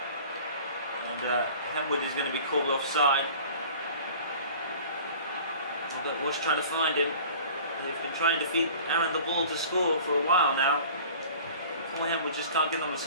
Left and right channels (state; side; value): inverted; both; correlation -0.44